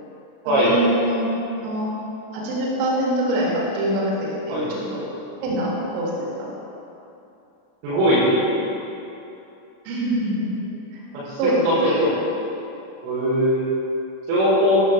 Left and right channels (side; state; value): left; late; 37 ms